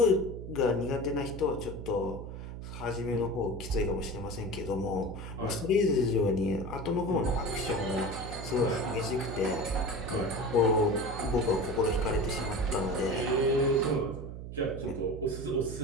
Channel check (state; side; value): noise; right; hum, 9 dB below the sound